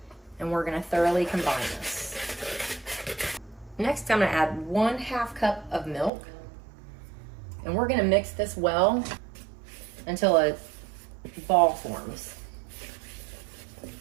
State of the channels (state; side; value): drops out; left; at 6.1 s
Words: and we're going to thoroughly combine this. Next, I'm going to add 1/2 cup of milk, and we're going to mix this well until a ball forms.